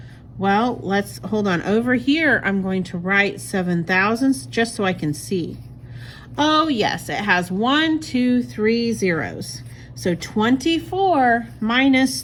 Well, let's hold on. Over here, I'm going to write 7,000 just so I can see. Oh yes, it has 1, 2, 3 zeros. So 24 minus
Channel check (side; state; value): both; identical; correlation 1.00